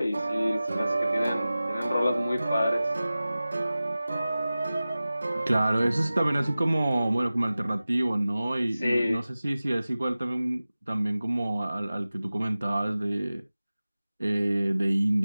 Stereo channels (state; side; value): inverted; both; correlation -0.96